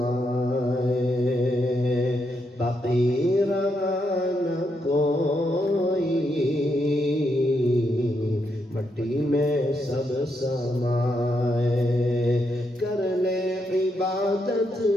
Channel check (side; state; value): both; normal; correlation 0.80